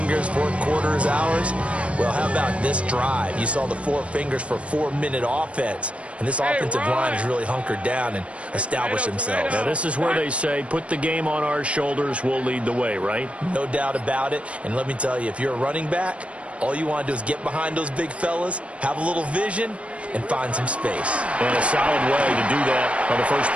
4th quarter is ours. Well, how about this drive? You saw the 4 fingers for 4-minute offense, and this offensive line has really hunkered down and established themselves. Now, this is where they say, put the game on our shoulders, we'll lead the way, right? No doubt about it, and let me tell you, if you're a running back, all you want to do is get behind those big fellas, have a little vision, and find some space. And a solid way to do that on the first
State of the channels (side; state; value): left; late; 0.062 ms